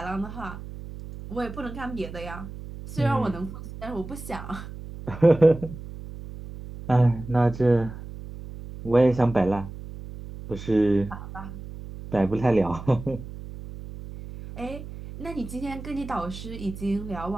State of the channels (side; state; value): right; noise; hum, 12 dB below the sound